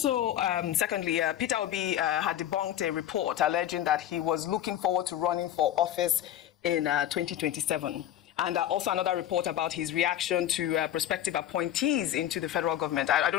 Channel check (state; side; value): quieter; right; 11.8 dB